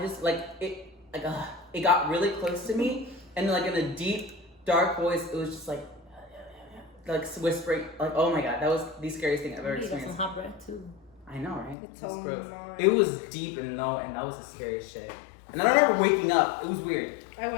like, it got really close to me, and like in a deep, dark voice, it was just like whispering, like, oh my God, that was the scariest thing I've ever experienced. You got some hot breath too. I know, right? It's That's so gross. annoying. It was deep and low, and that was the scariest shit. And I remember waking up. It was weird. I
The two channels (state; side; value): drops out; right; at 11.8 s